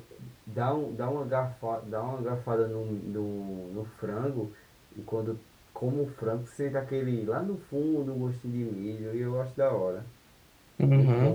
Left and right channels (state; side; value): identical; both; correlation 1.00